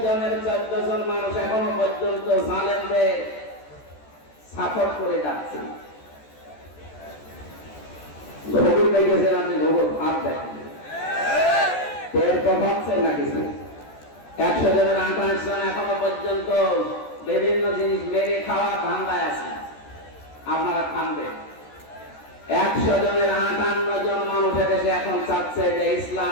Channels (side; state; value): right; late; 14 ms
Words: জনের 14 জন মানুষ এখনো পর্যন্ত জালেমদের সাপোর্ট করে যাচ্ছে। ভোগুর দেখেছেন আপনি, ভোগুর ভাব দেখেন, পেট তো ভাবছেন না কিছু। 100 জনের 28 জন এখনো পর্যন্ত বিভিন্ন জিনিস মেরে খাওয়ার ধান্দায় আছে। আপনারা খানবেন। 100 জনের 58 জন মানুষ দেশে এখন চাচ্ছে যে